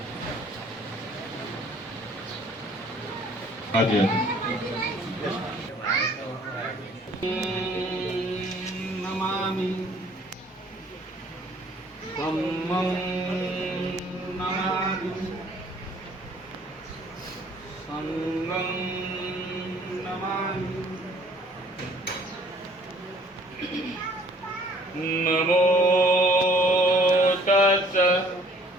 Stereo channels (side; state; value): both; normal; correlation 0.57